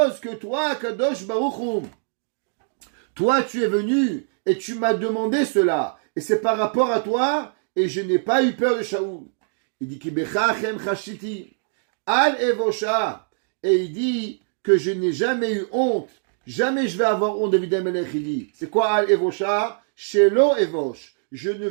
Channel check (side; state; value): left; silent; digital silence